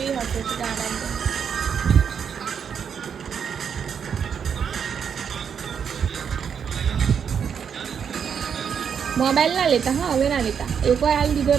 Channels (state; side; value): quieter; left; 7.3 dB